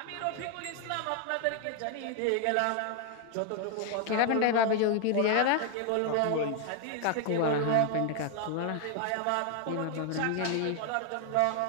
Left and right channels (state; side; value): different; both; correlation 0.00